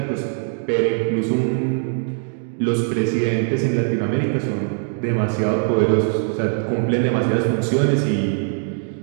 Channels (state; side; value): silent; left; 62 dB below the other